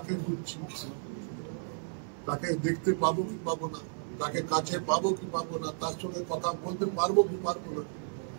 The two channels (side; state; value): left; silent; 56 dB below the other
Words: খুঁজছি। তাকে দেখতে পাবো কি পাবো না, তাকে কাছে পাবো কি পাবো না, তার সঙ্গে কথা বলতে পারবো কি পারবো না,